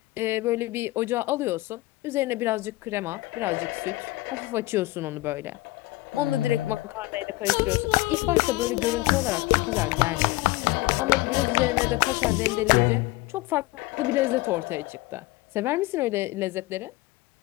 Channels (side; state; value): right; quieter; 20.1 dB